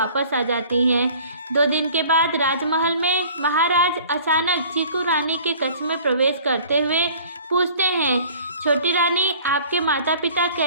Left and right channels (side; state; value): both; inverted; correlation -0.49